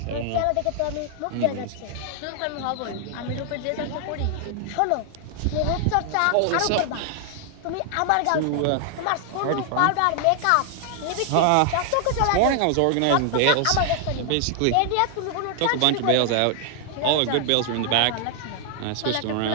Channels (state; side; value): different; both; correlation 0.00